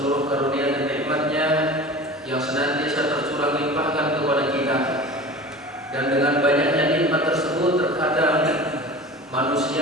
karunia dan nikmat-Nya yang senantiasa tercurah limpahkan kepada kita. Dan dengan banyaknya nikmat tersebut terkadang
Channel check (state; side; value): normal; both; correlation 0.36